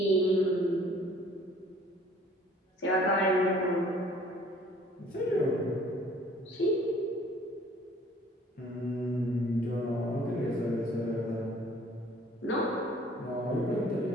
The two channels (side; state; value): both; normal; correlation 0.54